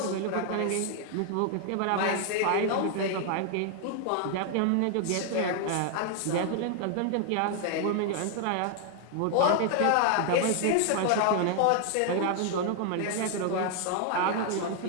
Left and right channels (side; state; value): both; different; correlation 0.00